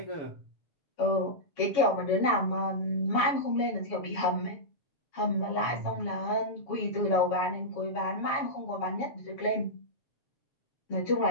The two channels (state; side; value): late; right; 7.2 ms